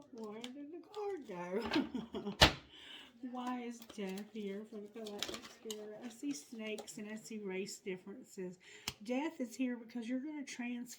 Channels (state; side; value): identical; both; correlation 1.00